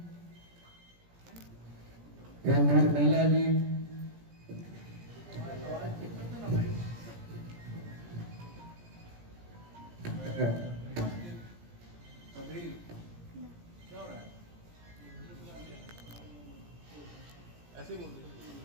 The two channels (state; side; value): late; left; 17 ms